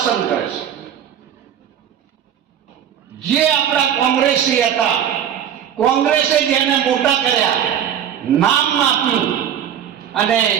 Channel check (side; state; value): left; quieter; 9.4 dB